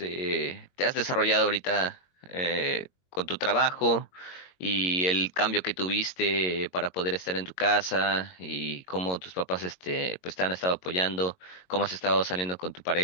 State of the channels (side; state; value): right; late; 22 ms